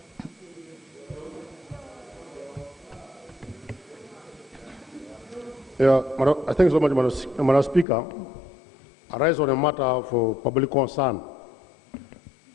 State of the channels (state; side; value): drops out; right; at 7.9 s